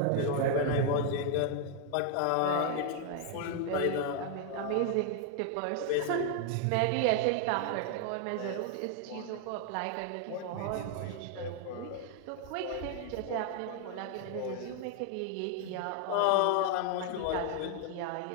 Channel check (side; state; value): both; different; correlation 0.00